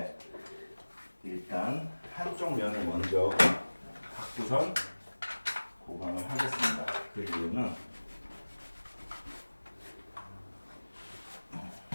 일단 한쪽 면을 먼저 갖고선 보강을 하겠습니다. 그 이유는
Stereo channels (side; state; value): both; inverted; correlation -1.00